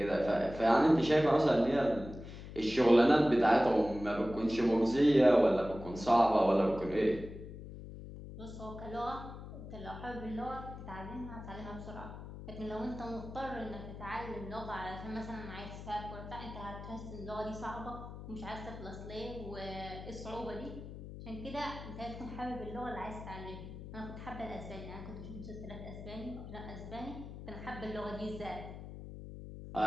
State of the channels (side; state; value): left; noise; hum, 12 dB below the sound